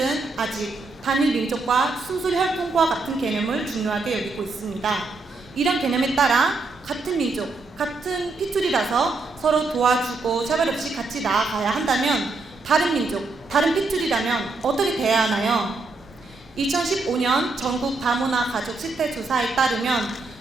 아직 단일 민족과 순수 혈통과 같은 개념을 중요하게 여기고 있습니다. 이런 개념에 따라 같은 민족, 같은 핏줄이라서 서로 도와주고 차별 없이 같이 나아가야 한다면 다른 민족, 다른 핏줄이라면 어떻게 돼야 하나요? 2015년 전국 다문화 가족 실태 조사에 따르면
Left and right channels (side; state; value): left; quieter; 3.6 dB